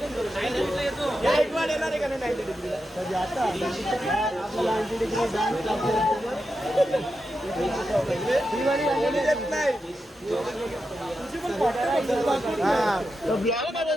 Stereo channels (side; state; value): both; normal; correlation 0.88